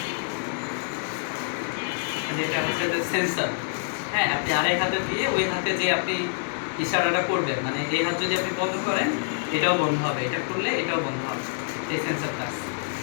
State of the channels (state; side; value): silent; right; digital silence